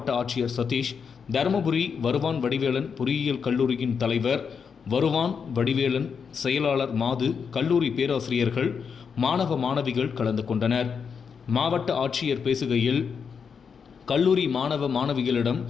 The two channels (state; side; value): quieter; right; 6.3 dB